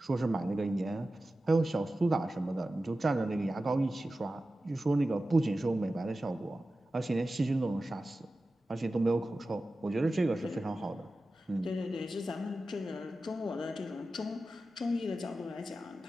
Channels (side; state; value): both; normal; correlation 0.94